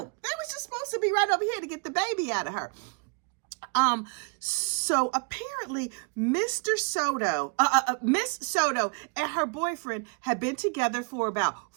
They was just supposed to be right over here to get the baby out of her. So apparently Miss Soto and her boyfriend had been together for about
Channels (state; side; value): quieter; left; 35.7 dB